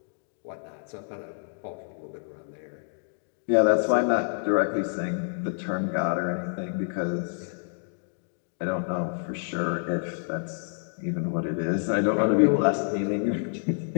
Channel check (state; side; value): silent; right; digital silence